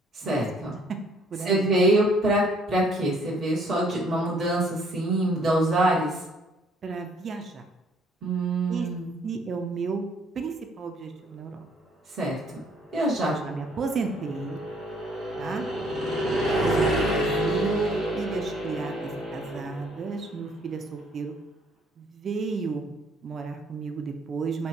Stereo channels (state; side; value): normal; both; correlation 0.63